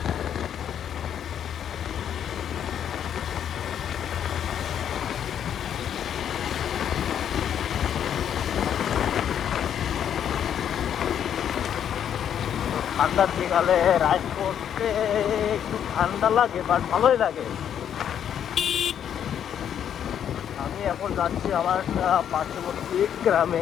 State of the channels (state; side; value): quieter; right; 9.2 dB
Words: ঠান্ডার বিকালে রাইড করতে একটু ঠান্ডা লাগে, বাট ভালোই লাগে। আমি এখন যাচ্ছি আমার একটা পার্শ্ববর্তী গ্রামে,